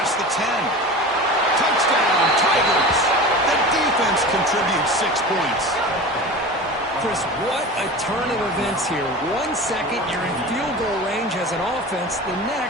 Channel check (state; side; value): normal; both; correlation 0.33